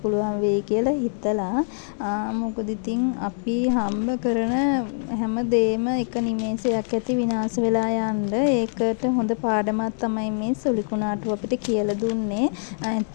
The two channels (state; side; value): silent; right; digital silence